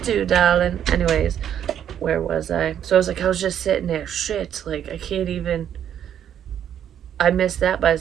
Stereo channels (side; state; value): left; quieter; 9.7 dB